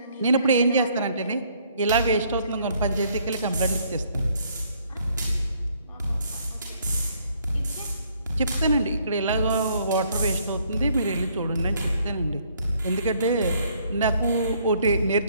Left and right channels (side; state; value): both; inverted; correlation -0.65